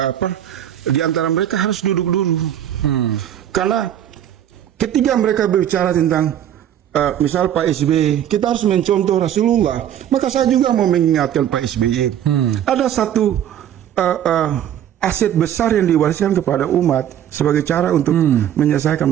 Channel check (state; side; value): quieter; left; 10.6 dB